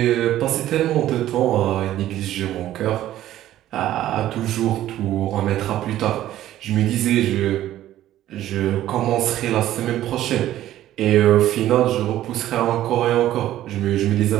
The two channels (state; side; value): quieter; left; 13.3 dB